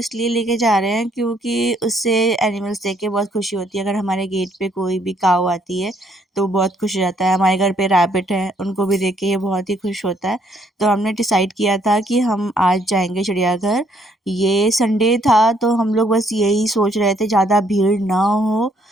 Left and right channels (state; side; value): normal; both; correlation 0.68